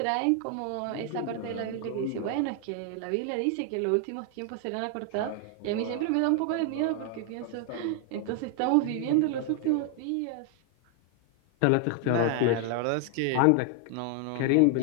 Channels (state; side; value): different; both; correlation 0.00